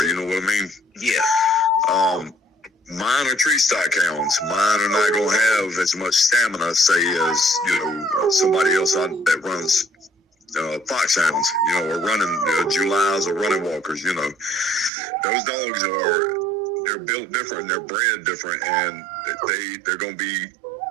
You know what I mean? Yeah. Mine are tree stock hounds. Mine are not going to have as much stamina, say, as, you know, somebody else that runs foxhounds, you know, or running Julys or running walkers. You know, those dogs they're built different, and they're bred different, and they're going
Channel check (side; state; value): left; drops out; at 14.9 s